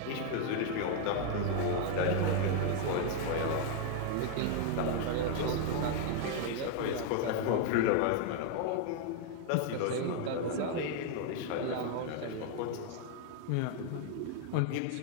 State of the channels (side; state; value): both; different; correlation 0.00